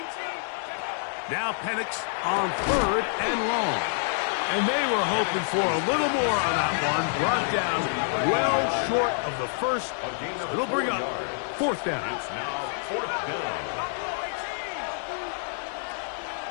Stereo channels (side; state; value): right; silent; 60 dB below the other